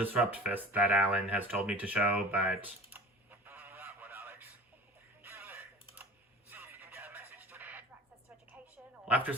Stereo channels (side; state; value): both; normal; correlation 0.40